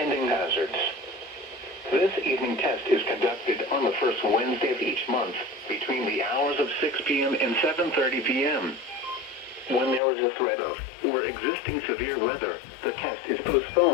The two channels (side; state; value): right; drops out; at 10.0 s